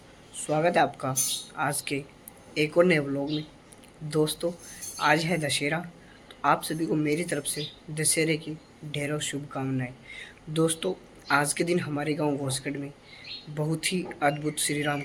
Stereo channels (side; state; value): both; identical; correlation 1.00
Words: स्वागत है आपका आज के एक और नए व्लॉग में। दोस्तों, आज है दशहरा, तो आप सभी को मेरी तरफ से दशहरे की ढेरों शुभकामनाएं। दोस्तों, आज के दिन हमारे गांव घोसगढ़ में बहुत ही अद्भुत श्री राम